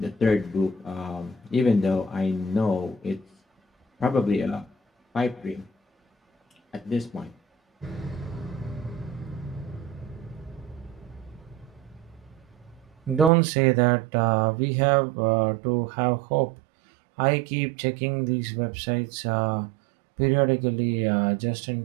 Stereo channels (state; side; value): drops out; left; at 13.3 s